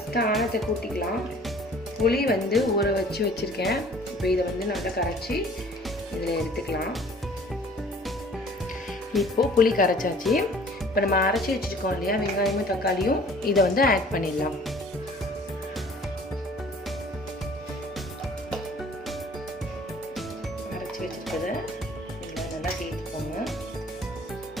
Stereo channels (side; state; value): both; normal; correlation 0.52